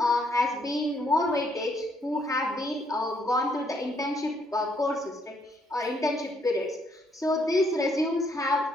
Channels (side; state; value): both; normal; correlation 0.71